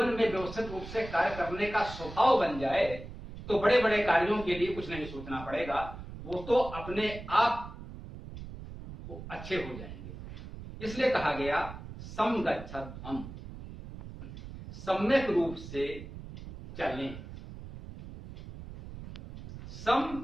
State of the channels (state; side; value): noise; right; rumble, 12 dB below the sound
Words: में व्यवस्थित रूप से कार्य करने का स्वभाव बन जाए तो बड़े बड़े कार्यों के लिए कुछ नहीं सोचना पड़ेगा, वो तो अपने आप अच्छे हो जाएंगे। इसलिए कहा गया समगच्छध्वम्, सम्यक रूप से चलें।